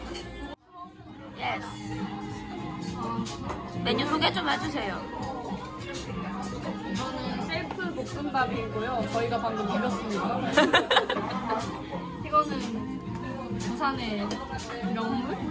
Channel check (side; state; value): both; identical; correlation 1.00